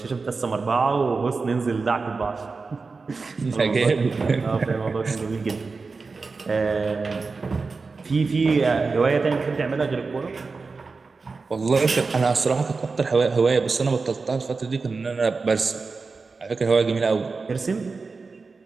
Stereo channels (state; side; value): quieter; left; 4.3 dB